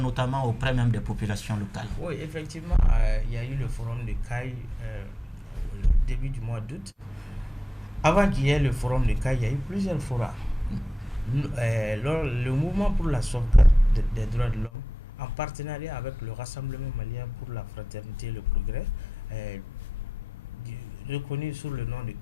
auprès même des populations locales. Oui, effectivement, il y a eu le forum de CAI au début du mois d'août. Avant qu'il y ait le forum de CAI, il y a eu plusieurs forums. Le mouvement pour la sauvegarde des droits de l'homme, en partenariat avec le Rassemblement malien pour la fraternité et le progrès, reconnu sous le nom de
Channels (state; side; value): normal; both; correlation 0.91